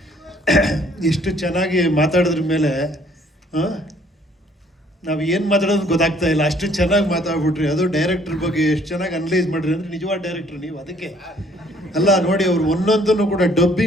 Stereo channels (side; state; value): both; normal; correlation 0.61